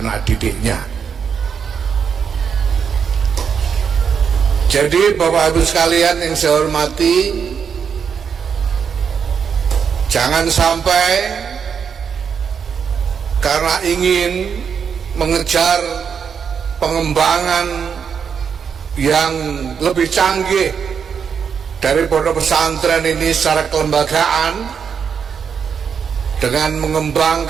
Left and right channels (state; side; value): quieter; left; 6.8 dB